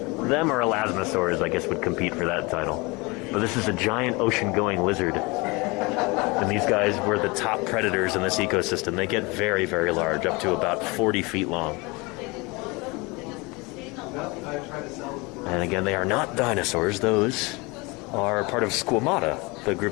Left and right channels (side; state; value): right; quieter; 25.9 dB